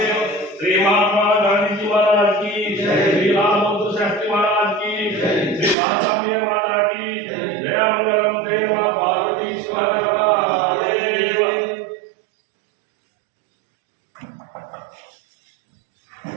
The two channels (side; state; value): left; drops out; at 5.8 s